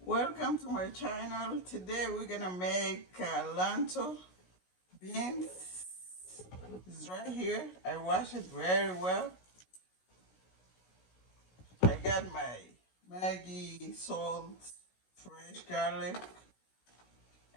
Welcome to my channel. Today we're gonna make lentil beans. It's right here. I wash it very well. I got my Maggi, salt, fresh garlic,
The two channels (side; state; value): right; late; 16 ms